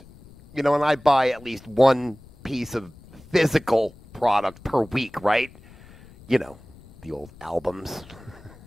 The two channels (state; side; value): noise; left; rumble, 22 dB below the sound